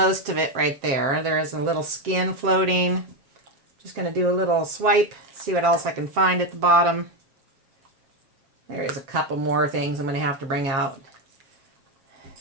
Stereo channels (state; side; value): late; left; 7.4 ms